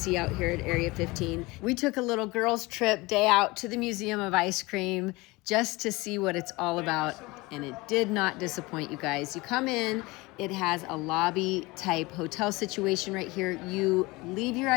out here at Area 15. We took a little girls trip day out to the Museum of Ice Cream just to see what it's all about, and it did not disappoint, you guys. You come in, it has a lobby type hotel situation right here. You leave your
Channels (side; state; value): right; quieter; 22.8 dB